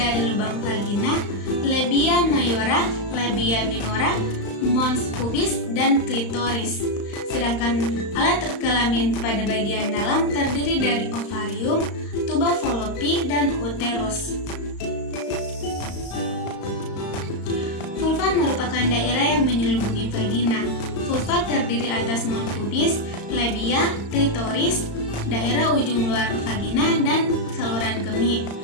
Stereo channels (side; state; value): right; late; 35 ms